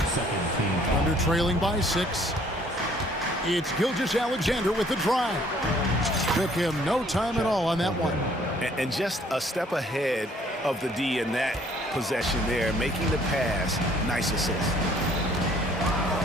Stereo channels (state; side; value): normal; both; correlation 0.60